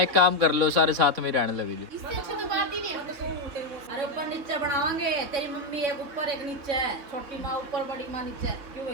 एक काम कर लो, सारे साथ में रहने लगे जो। इससे अच्छा तो बात ही नहीं है। अरे ऊपर नीचे बनावांगे तेरी मम्मी एक ऊपर एक नीचे है छोटी माँ ऊपर बड़ी माँ नीचे है क्यों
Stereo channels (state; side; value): late; left; 3.6 ms